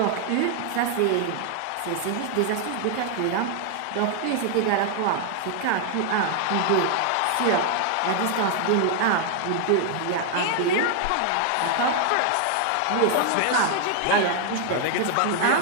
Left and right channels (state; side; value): different; both; correlation 0.00